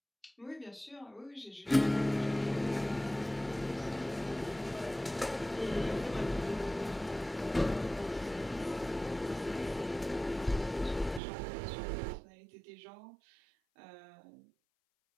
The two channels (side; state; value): left; drops out; at 11.2 s